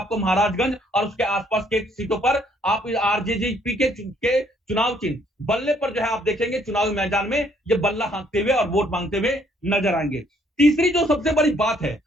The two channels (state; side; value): normal; both; correlation 0.66